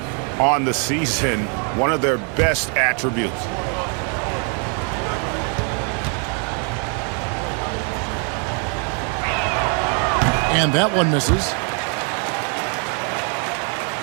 on the season, one of their best attributes. And that one misses.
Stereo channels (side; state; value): left; quieter; 39.3 dB